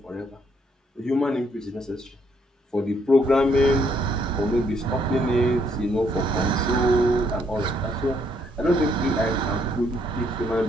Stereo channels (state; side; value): normal; both; correlation 0.70